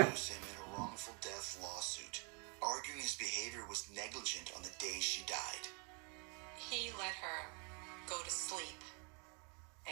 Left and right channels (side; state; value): left; quieter; 35.6 dB